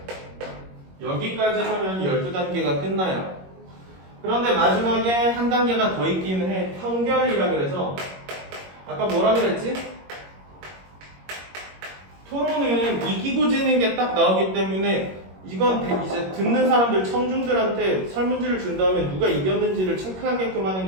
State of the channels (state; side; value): late; left; 21 ms